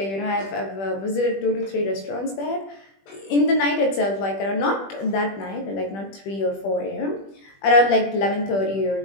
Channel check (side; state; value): right; late; 20 ms